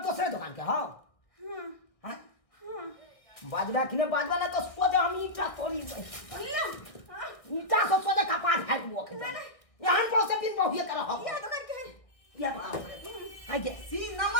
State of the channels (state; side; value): late; right; 1.6 ms